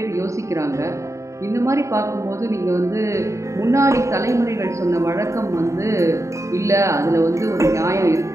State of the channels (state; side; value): late; left; 0.14 ms